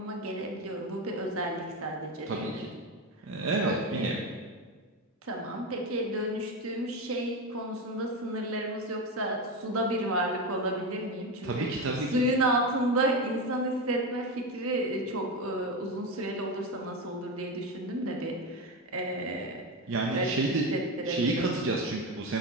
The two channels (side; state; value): both; normal; correlation 0.17